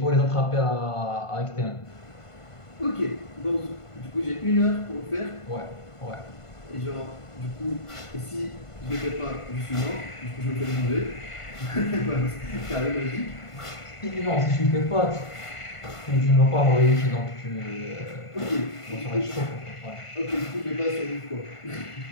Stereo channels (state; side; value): late; right; 1.5 ms